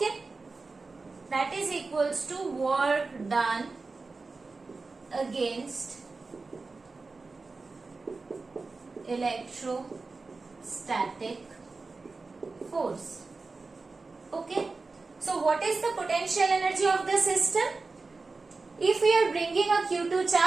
that is equals to work done against electrostatic force. Okay, so what is the potential energy of the system? If we are bringing a Q2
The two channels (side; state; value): left; quieter; 3.9 dB